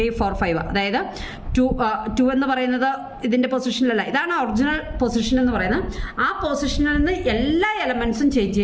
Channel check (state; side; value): identical; both; correlation 1.00